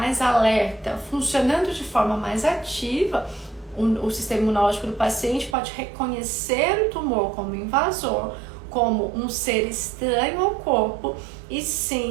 alerta, funcionando de forma mais ativa, o sistema imunológico do paciente pode reconhecer o tumor como invasor, como um ser estranho ao corpo, e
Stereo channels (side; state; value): left; drops out; at 5.6 s